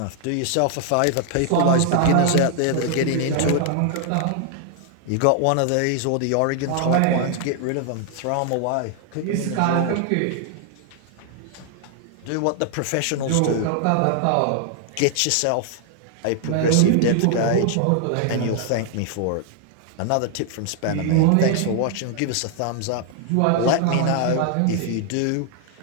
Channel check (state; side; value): different; both; correlation 0.00